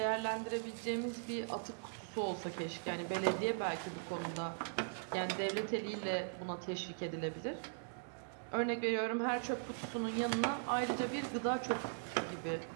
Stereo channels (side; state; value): left; silent; digital silence